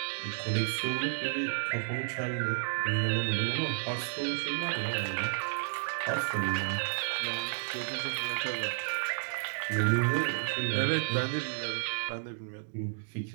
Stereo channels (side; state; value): left; silent; digital silence